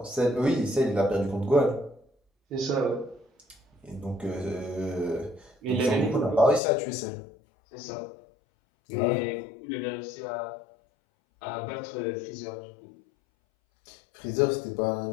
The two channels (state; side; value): drops out; right; at 6.6 s